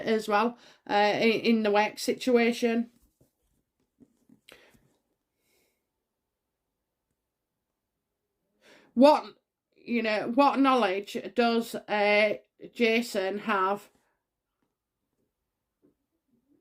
well in the work situation. What, you know, what knowledge does Jason have?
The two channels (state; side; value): identical; both; correlation 1.00